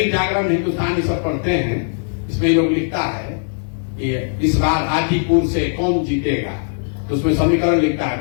जागरण, हिंदुस्तान सब पढ़ते हैं, इसमें लोग लिखता है कि इस बार हाजीपुर से कौन जीतेगा, तो उसमें समीकरण लिखता है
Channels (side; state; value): right; silent; digital silence